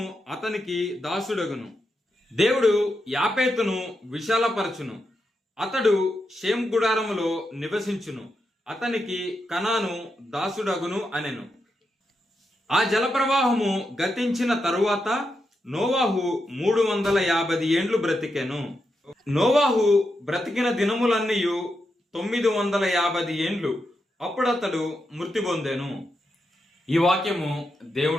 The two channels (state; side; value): normal; both; correlation 0.85